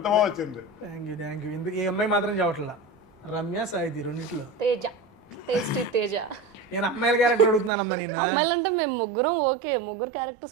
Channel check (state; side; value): drops out; left; at 7.7 s